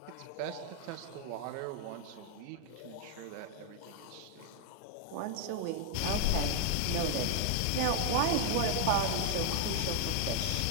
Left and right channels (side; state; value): both; different; correlation 0.00